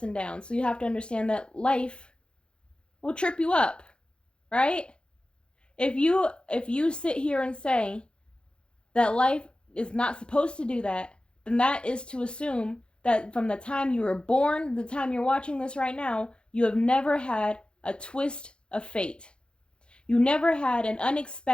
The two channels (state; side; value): late; right; 0.054 ms